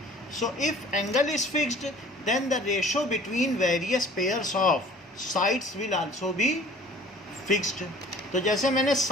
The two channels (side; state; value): both; normal; correlation 0.49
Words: So if angle is fixed then the ratio between various pairs of sides will also be fixed. तो जैसे मैंने